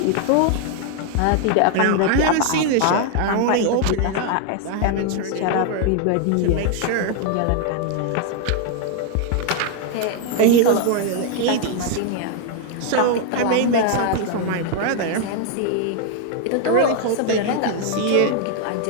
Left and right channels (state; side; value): different; both; correlation 0.00